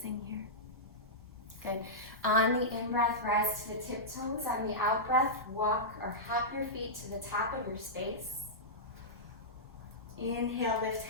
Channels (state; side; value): normal; both; correlation -0.13